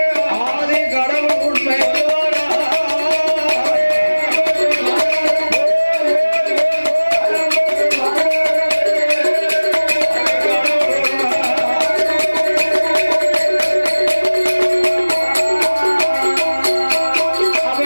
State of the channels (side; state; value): both; inverted; correlation -1.00